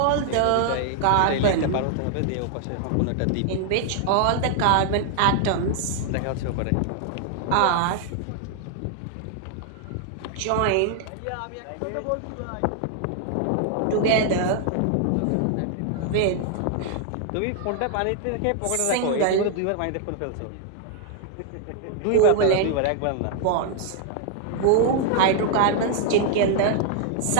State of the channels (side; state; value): both; different; correlation 0.00